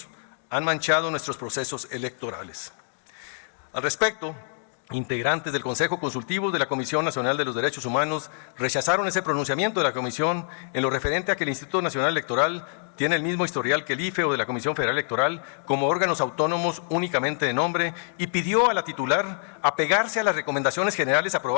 han manchado nuestros procesos electorales. Al respecto, integrantes del Consejo Consultivo de la Comisión Nacional de los Derechos Humanos rechazaron ese pronunciamiento de la Comisión en lo referente a que el Instituto Nacional Electoral tiene el mismo historial que el IFE o de la Comisión Federal Electoral como órganos autónomos únicamente de nombre, y pidió a la titular apegarse a las recomendaciones generales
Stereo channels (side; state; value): right; silent; digital silence